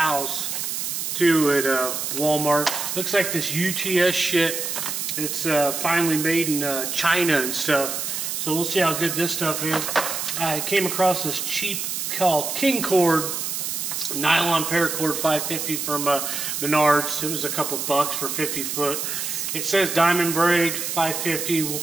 too at Walmart. Looks like this UTS shit. It's finally made in China and stuff. So we'll see how good this stuff is. I came across this cheap called King Cord nylon paracord 550 from Menards. It was a couple bucks for 50 foot. It says diamond braid 550. We'll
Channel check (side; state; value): right; noise; hiss, 3 dB below the sound